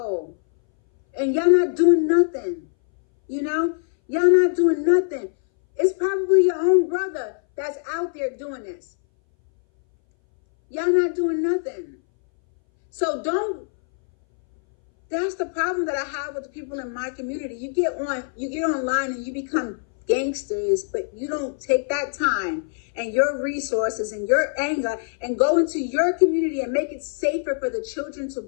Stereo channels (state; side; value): silent; right; 61 dB below the other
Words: And y'all not doing nothing, you know? Y'all not doing nothing. It's probably your own brother that's out there doing this. Y'all not doing nothing. So that's the problem that I have with the people in my community. You get online and you become gangsters, but you don't take that time and your resources and your anger and go into your community and make it safer for the children to